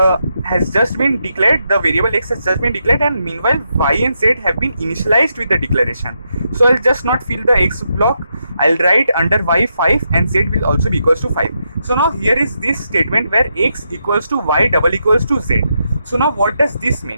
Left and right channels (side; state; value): both; inverted; correlation -0.82